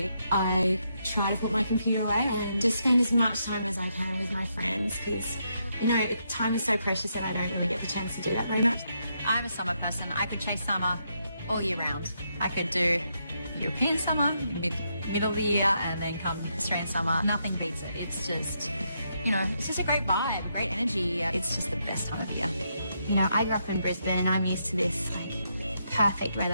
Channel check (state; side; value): inverted; both; correlation -0.79